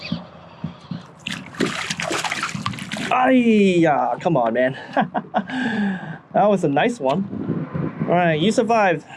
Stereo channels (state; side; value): identical; both; correlation 1.00